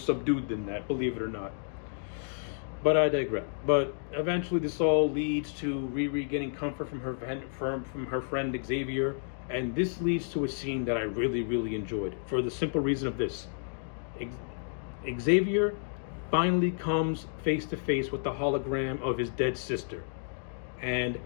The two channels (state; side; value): silent; right; digital silence